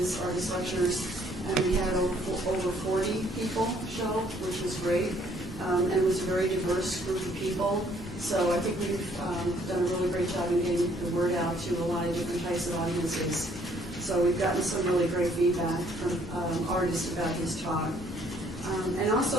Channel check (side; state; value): both; normal; correlation 0.63